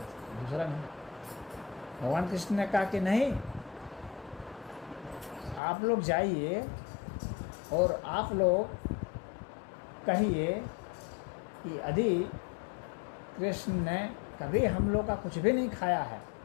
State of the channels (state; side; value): drops out; right; at 5.6 s